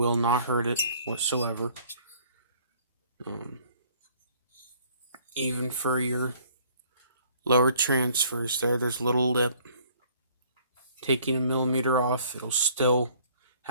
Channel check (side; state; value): both; inverted; correlation -0.58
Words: not hurt it whatsoever. Even for your lower transfers there's a little lip. Taking a millimeter off, it'll still